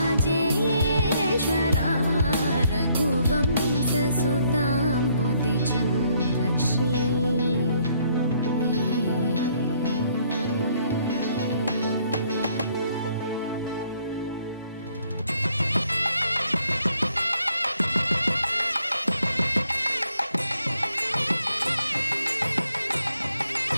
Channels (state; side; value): inverted; both; correlation -0.69